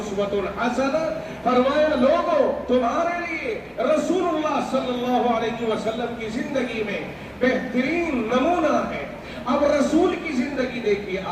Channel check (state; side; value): identical; both; correlation 1.00